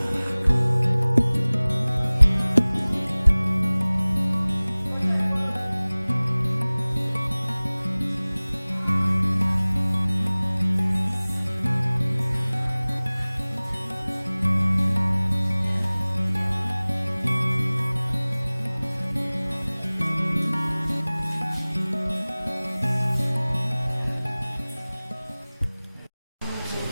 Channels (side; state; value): both; inverted; correlation -1.00